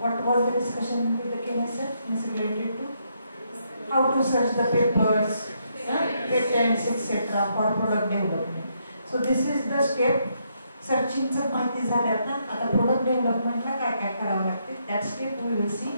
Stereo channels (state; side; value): inverted; both; correlation -0.76